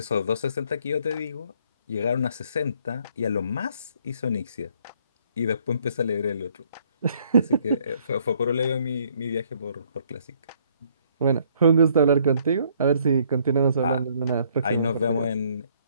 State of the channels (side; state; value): both; inverted; correlation -0.65